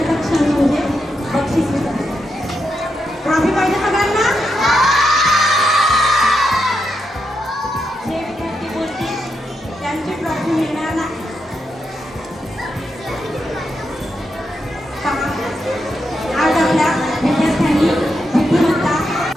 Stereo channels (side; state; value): both; normal; correlation 0.84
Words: क्षण म्हणजे बक्षीस वितरण. ट्रॉफी पाहिजे सगळ्यांना. जे विद्यार्थी बोलतील त्यांची ट्रॉफी मिळणार नाही. पहा, आज आपल्या विद्यार्थ्यांनी बुद्धिमत्ता